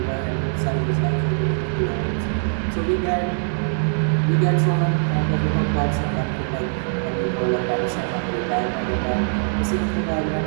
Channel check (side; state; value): left; silent; digital silence